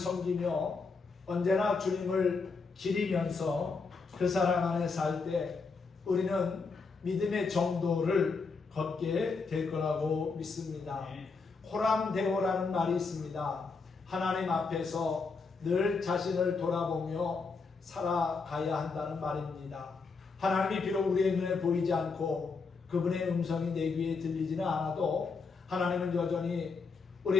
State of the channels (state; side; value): quieter; right; 4.6 dB